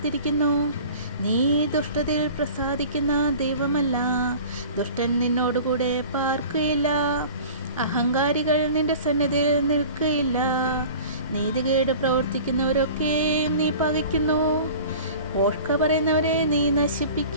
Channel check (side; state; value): both; inverted; correlation -0.42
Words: നീ ദുഷ്ടതയിൽ പ്രസാദിക്കുന്ന ദൈവമല്ല. ദുഷ്ടൻ നിന്നോടുകൂടെ പാർക്കുകയില്ല. അഹങ്കാരികൾ നിന്റെ സന്നിധിയിൽ നിൽക്കുകയില്ല. നീതികേട് പ്രവർത്തിക്കുന്നവരൊക്കെയും നീ പകയ്ക്കുന്നു. പോഷ്ക പറയുന്നവരെ നീ